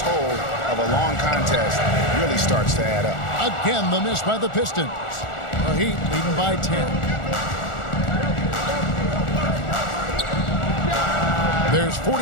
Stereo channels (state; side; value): late; right; 1.4 ms